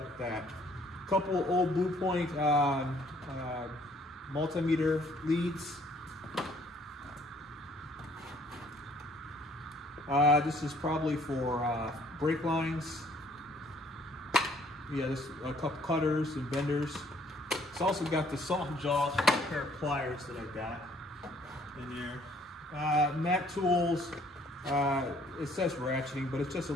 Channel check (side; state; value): both; normal; correlation 0.61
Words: with that. Couple old Blue Point multimeter leads. This is probably for brake lines. Yeah, this a couple cutters and benders. It's also got the soft jaws for a pair of pliers that I got in there. Mac Tools. It says ratcheting, but it's just a